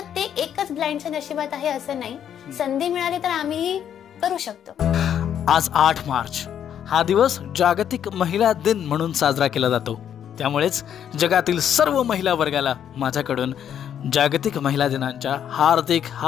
ते एकच ब्लाइंडच्या नशिबात आहे असं नाही. संधी मिळाली तर आम्ही करू शकतो. आज 8 मार्च हा दिवस जागतिक महिला दिन म्हणून साजरा केला जातो. त्यामुळेच जगातील सर्व महिला वर्गाला माझ्याकडून जागतिक महिला दिनाच्या हार्दिक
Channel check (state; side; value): quieter; right; 9.4 dB